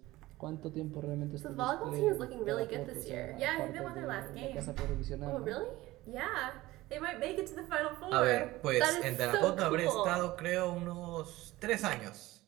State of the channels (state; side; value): quieter; left; 18.1 dB